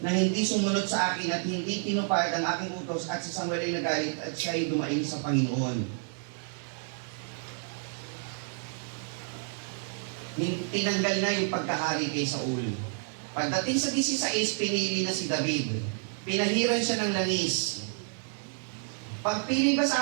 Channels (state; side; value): silent; left; 58 dB below the other